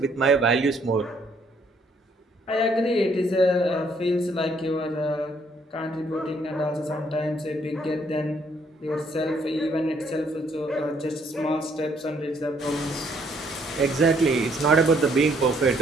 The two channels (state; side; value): normal; both; correlation 0.67